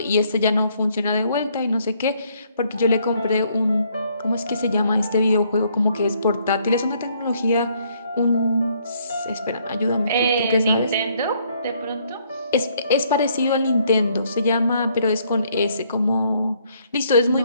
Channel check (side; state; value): both; inverted; correlation -0.68